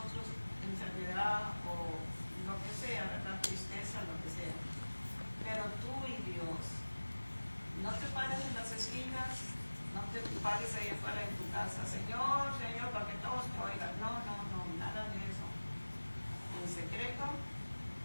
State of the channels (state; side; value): inverted; both; correlation -1.00